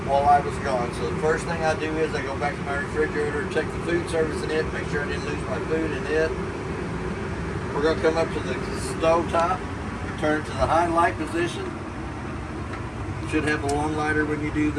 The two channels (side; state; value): both; identical; correlation 1.00